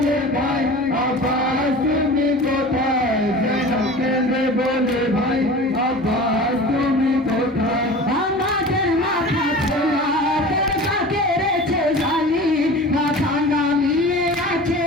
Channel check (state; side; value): noise; left; hum, 28 dB below the sound